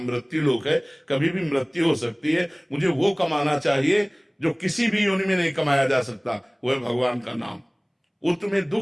मृत्यु लोक है, कभी भी मृत्यु हो सकती है। मुझे वो कमाना चाहिए जो किसी भी योनि में नहीं कमाया जा सकता, वो है भगवान का नाम। वो तुम्हें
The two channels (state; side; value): identical; both; correlation 1.00